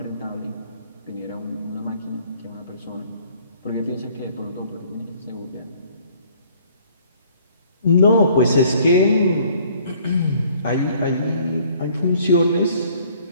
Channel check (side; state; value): both; inverted; correlation -0.58